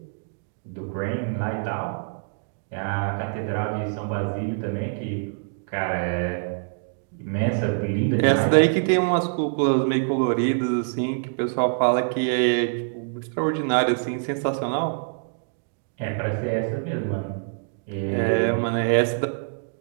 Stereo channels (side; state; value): left; silent; digital silence